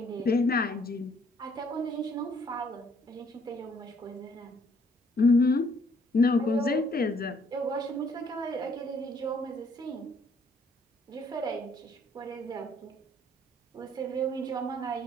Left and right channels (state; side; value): normal; both; correlation 0.65